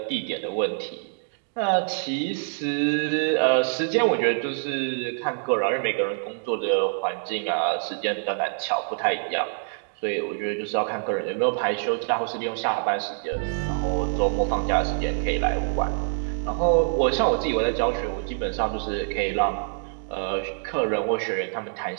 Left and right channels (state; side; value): silent; left; digital silence